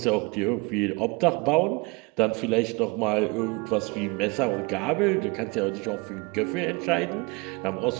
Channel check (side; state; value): left; quieter; 27.4 dB